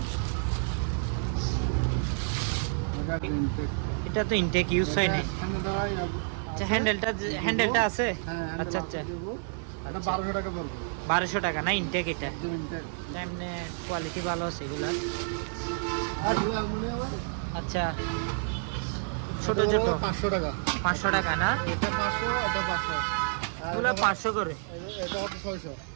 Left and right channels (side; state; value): left; silent; digital silence